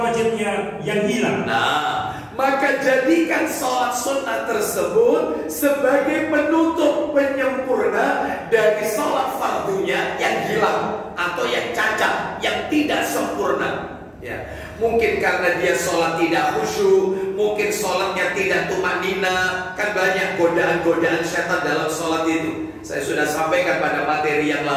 wajibnya yang hilang. Nah, maka jadikan sholat sunnah tersebut sebagai penutup penyempurna dari sholat fardunya yang hilang atau yang cacat, yang tidak sempurna. Ya, mungkin karena dia sholat tidak khusyuk, mungkin sholatnya tidak tumanina, kan banyak godaan-godaan setan dalam sholat itu. Saya sudah sampaikan pada materi yang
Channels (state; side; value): identical; both; correlation 1.00